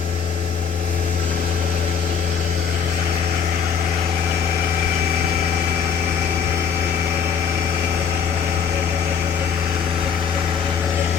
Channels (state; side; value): quieter; right; 6.8 dB